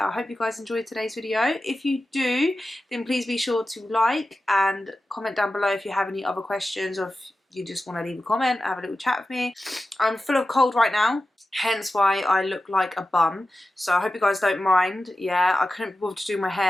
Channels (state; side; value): normal; both; correlation 0.93